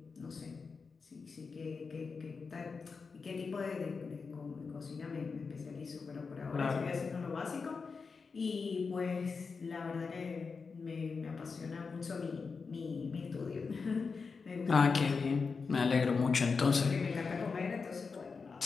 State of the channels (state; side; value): quieter; right; 4.9 dB